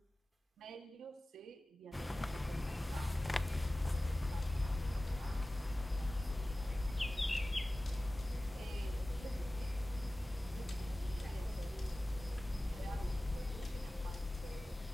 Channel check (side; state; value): both; normal; correlation 0.97